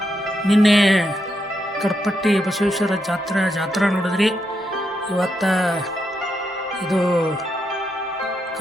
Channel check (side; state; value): both; normal; correlation 0.82